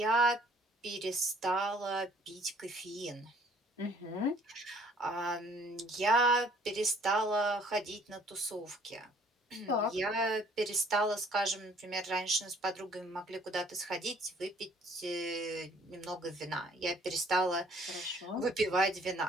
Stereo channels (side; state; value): both; normal; correlation 0.59